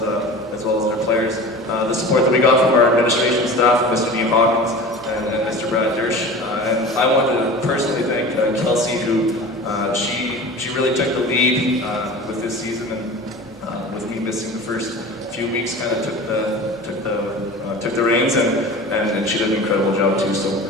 their players. The support that we got from our administration staff, Mr. Dean Hawkins and Mr. Brad Dersch. And I wanted to personally thank Kelsey, who she really took the lead with this season, and with me missing the first few weeks, kind of took the reins, and she did an incredible job too. So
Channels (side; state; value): both; normal; correlation 0.36